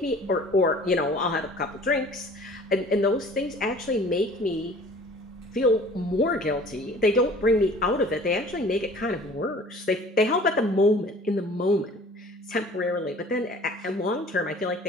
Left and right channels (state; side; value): normal; both; correlation 0.48